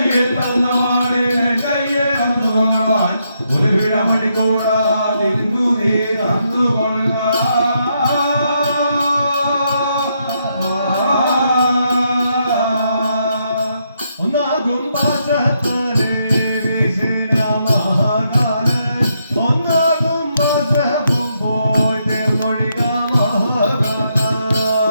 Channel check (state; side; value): inverted; both; correlation -0.78